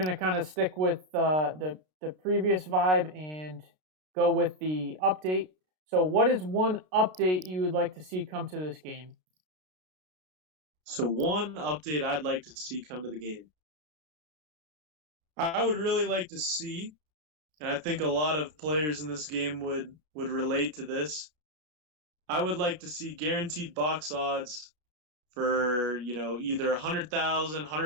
kind of stick with the previous vibe and go with the update. So, what is one update you would like to see come to this game? So one update I'd like to see come to the game. I would really like to see, and I think a lot of players in this game would relate to this. I would like to see guaranteed box odds for, either 100,000,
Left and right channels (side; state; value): left; late; 33 ms